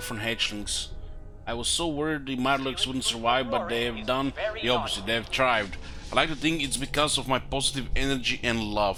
hatchlings. I was so worried the Mirelurks wouldn't survive, but they have done the opposite. They have thrived. I like to think it's because of my positive energy and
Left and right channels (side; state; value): both; identical; correlation 1.00